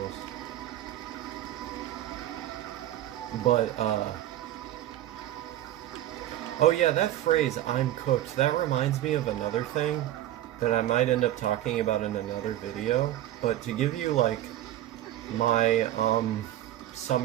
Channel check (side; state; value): left; quieter; 13.3 dB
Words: But, oh yeah, that phrase, I'm cooked, that reminds me of another thing that I might end up talking about in another video. But to give you, like, my,